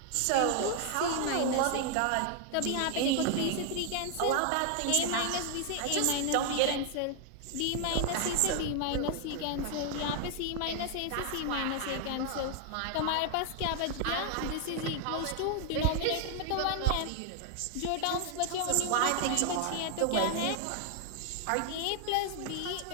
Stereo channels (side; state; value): both; different; correlation 0.00